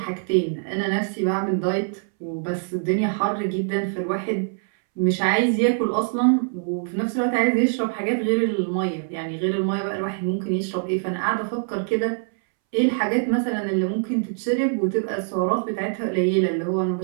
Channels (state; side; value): silent; left; 63 dB below the other